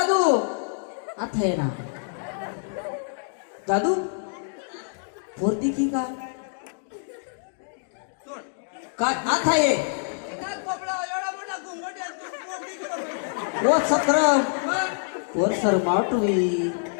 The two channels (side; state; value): right; silent; digital silence